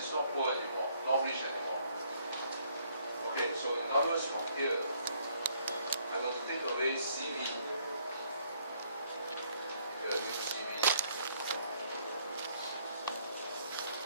not poor anymore, not rich anymore. Okay, so in other words, from here, I'm going to take away CV. Here, CV.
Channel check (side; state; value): both; inverted; correlation -0.66